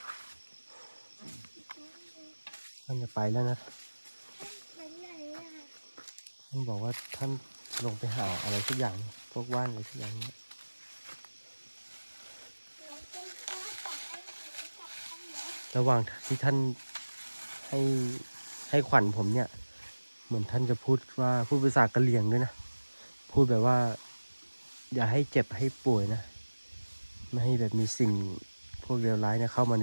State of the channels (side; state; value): both; inverted; correlation -1.00